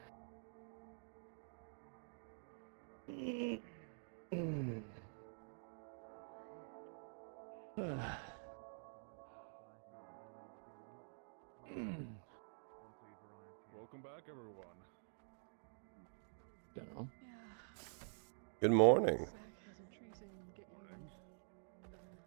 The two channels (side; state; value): left; silent; digital silence